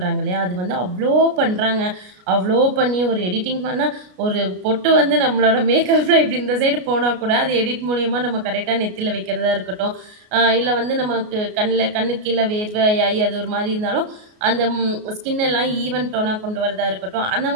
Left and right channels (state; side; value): late; left; 33 ms